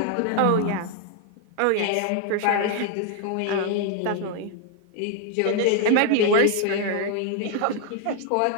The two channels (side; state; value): both; different; correlation 0.00